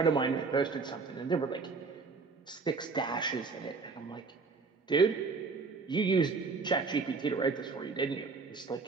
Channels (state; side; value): quieter; left; 4.4 dB